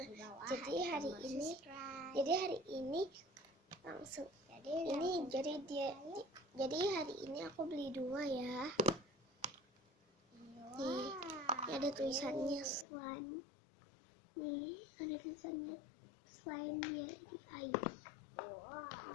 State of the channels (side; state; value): right; drops out; at 12.9 s